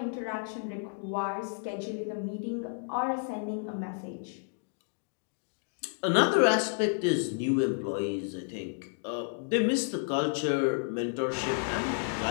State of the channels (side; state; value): right; silent; digital silence